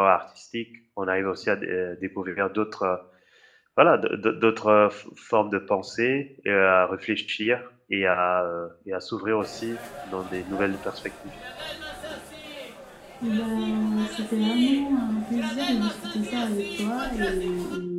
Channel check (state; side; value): identical; both; correlation 1.00